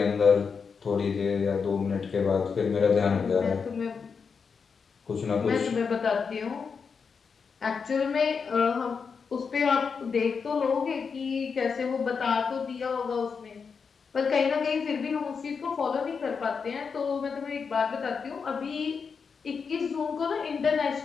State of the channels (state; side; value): quieter; right; 5.7 dB